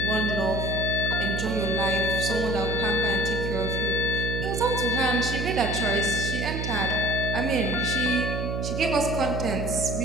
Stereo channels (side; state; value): right; noise; hum, 2 dB below the sound